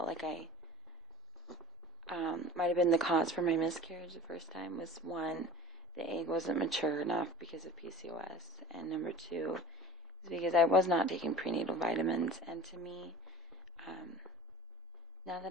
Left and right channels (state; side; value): normal; both; correlation 0.42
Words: like I might have been the cause for my miscarriage the first time. Was one, the egg wasn't mature enough because of PCOS, and number two is because I was not taking prenatal vitamins. And to me, now